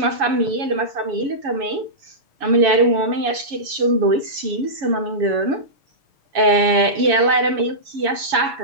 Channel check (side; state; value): left; late; 7.1 ms